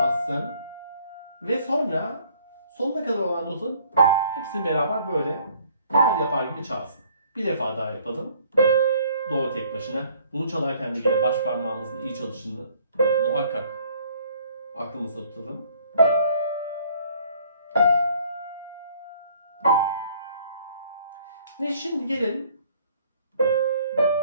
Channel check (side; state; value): both; inverted; correlation -0.59